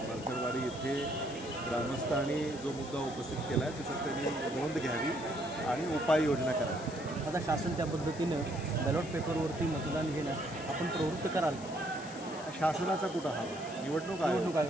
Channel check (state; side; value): noise; left; hiss, 16 dB below the sound